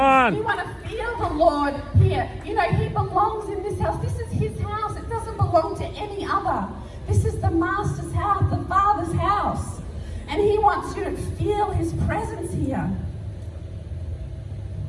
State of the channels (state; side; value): identical; both; correlation 1.00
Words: You want to feel the Lord here. He belongs in this house. This is his house. It doesn't belong to any other. This is the Master's house, the Father's house. And he wants you to feel his presence here.